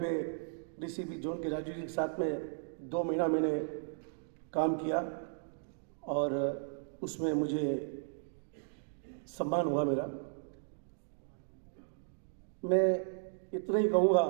पे डीसीपी जोन के राजू जी के साथ में 2 महीना मैंने काम किया और उसमें मुझे सम्मान हुआ मेरा। मैं इतना ही कहूँगा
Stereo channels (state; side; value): silent; left; digital silence